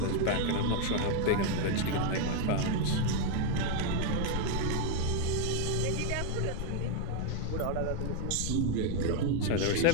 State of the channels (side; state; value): both; different; correlation 0.01